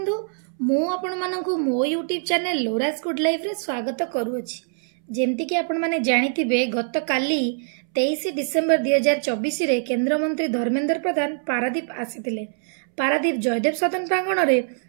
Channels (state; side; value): silent; left; 63 dB below the other